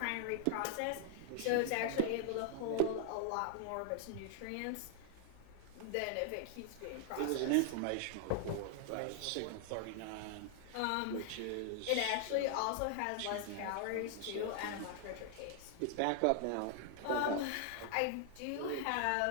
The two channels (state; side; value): different; both; correlation 0.00